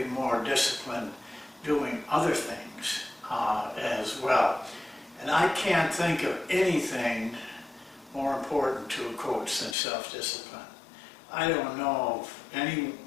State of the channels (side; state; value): right; drops out; at 9.8 s